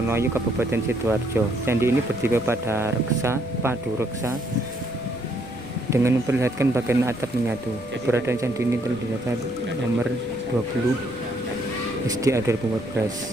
Kabupaten Sidoarjo. Candi ini berdiri pada padu reksa dengan memperlihatkan bagian atap menyatu. Keberadaan candi ini telah dinyatakan nomor 20 SDA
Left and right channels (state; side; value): noise; left; rumble, 22 dB below the sound